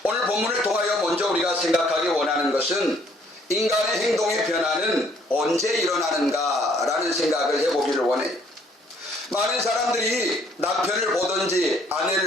오늘 본문을 통하여 먼저 우리가 생각하기 원하는 것은 인간의 행동의 변화는 언제 일어나는가 라는 생각을 해보기를 원해요. 많은 사람들이 남편을 보든지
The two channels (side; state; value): both; normal; correlation 0.63